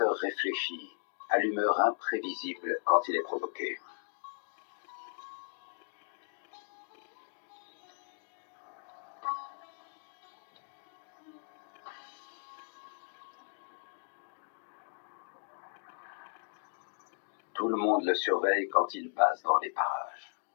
réfléchi, à l'humeur imprévisible quand il est provoqué. Tout le monde le surveille quand il passe dans les parages.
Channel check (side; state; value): right; silent; digital silence